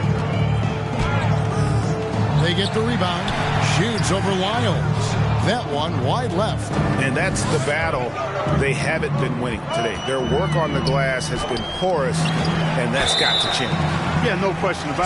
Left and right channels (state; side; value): identical; both; correlation 1.00